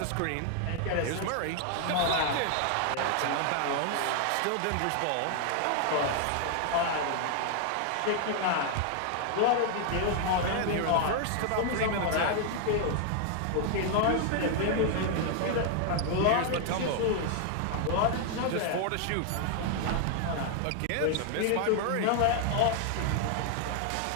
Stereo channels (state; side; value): different; both; correlation 0.00